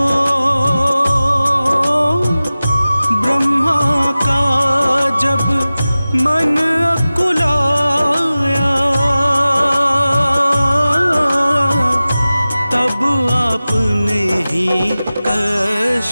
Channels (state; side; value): inverted; both; correlation -0.97